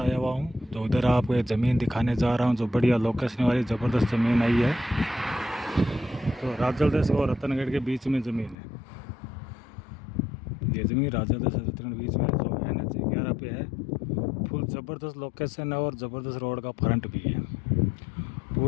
आया हुआ हूँ। तो उधर आपको एक ज़मीन दिखाने जा रहा हूँ जो बढ़िया लोकेशन वाली ज़बरदस्त ज़मीन आई है। तो राचल देश और रतनगढ़ के बीच में ज़मीन है। ये ज़मीन राचल देश और रतनगढ़ के बीच में जो NH 11 पे है। फुल ज़बरदस्त लोकेशन है और ज़बरदस्त रोड का फ्रंट भी है।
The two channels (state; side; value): drops out; right; at 8.6 s